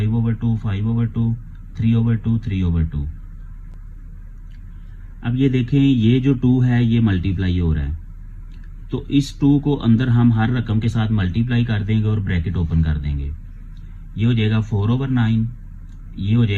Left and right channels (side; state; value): both; identical; correlation 1.00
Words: 5/2, 3/2, 3/2। अब ये देखें, ये जो 2 है ये मल्टीप्लाई हो रहा है, तो इस 2 को अंदर हम हर रकम के साथ मल्टीप्लाई कर देंगे और ब्रैकेट ओपन कर देंगे। ये हो जाएगा 4/9, ये हो